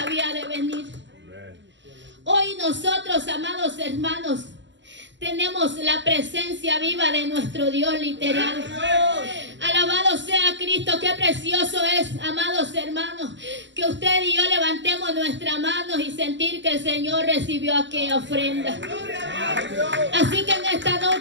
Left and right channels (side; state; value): left; late; 0.53 ms